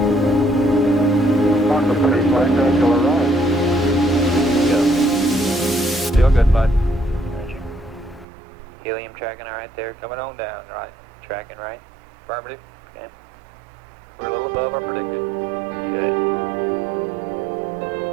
Mark the pretty flight to arrive. Go. Still good, bud. Helium tracking all right there. Coming on down, right. Tracking right. Affirmative. Okay. We're a little above our predicted. Good.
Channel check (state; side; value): drops out; left; at 8.2 s